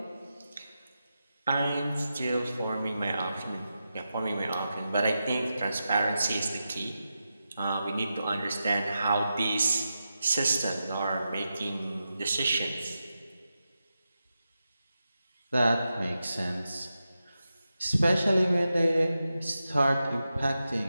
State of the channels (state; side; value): inverted; both; correlation -0.90